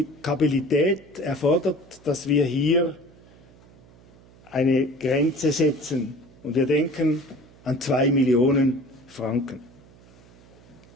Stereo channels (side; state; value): right; noise; hum, 25 dB below the sound